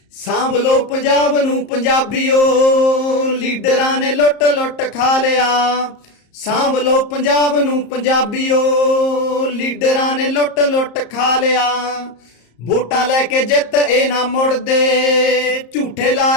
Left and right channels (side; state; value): right; late; 34 ms